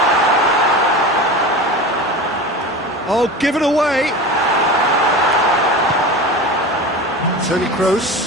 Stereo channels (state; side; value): normal; both; correlation 0.30